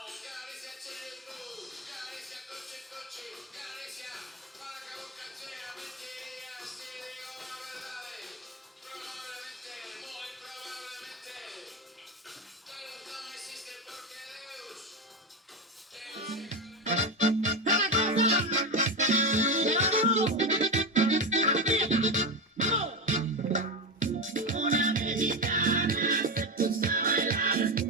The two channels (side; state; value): both; normal; correlation 0.15